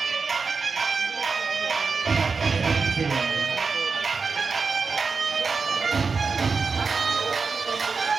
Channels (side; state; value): left; quieter; 4.7 dB